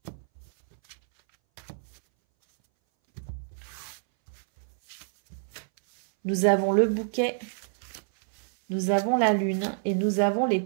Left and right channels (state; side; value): silent; left; 60 dB below the other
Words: Nous avons le bouquet, nous avons la lune et nous avons les